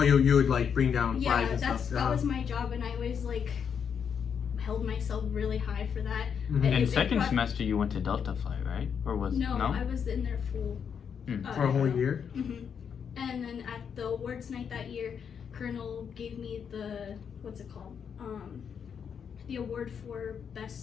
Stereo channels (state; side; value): quieter; right; 7.2 dB